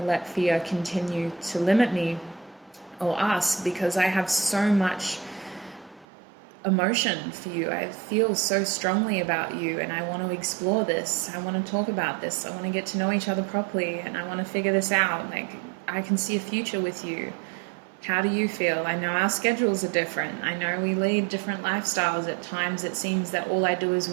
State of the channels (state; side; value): drops out; left; at 6.1 s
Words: let fear continue to limit me or us, because I have so much emotion for you. I feel so strongly about you, and I want to explore this. I want to talk about this. I want to get to know each other properly, and I want to figure this out. Like, I can see a future with you. How do you feel? I know our schedules are different. I know we lead different lifestyles. At times it seems that all I do is